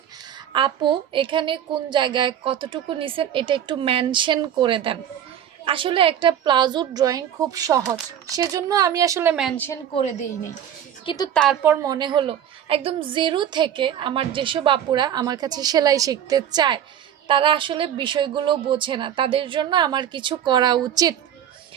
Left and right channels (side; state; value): left; quieter; 9.8 dB